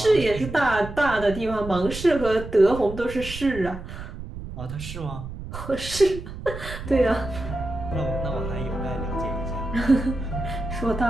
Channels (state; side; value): noise; right; rumble, 10 dB below the sound